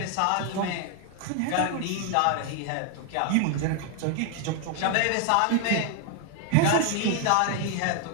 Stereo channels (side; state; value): both; different; correlation 0.00